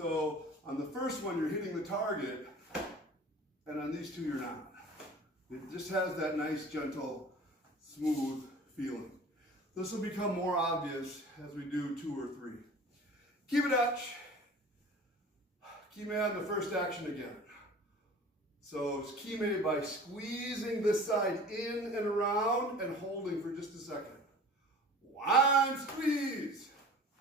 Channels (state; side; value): normal; both; correlation 0.42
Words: on the first one, you're hitting the target, and on these two, you're not. It just has that nice, gentle, smooth feeling. This will become more obvious as we do 2 or 3. Kibidachi. Kime on the first action again. So it's kime by squeezing this side in and around and holding for just a second. 1, squeeze.